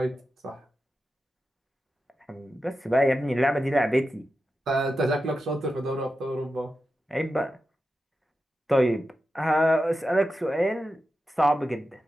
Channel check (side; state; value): both; normal; correlation 0.91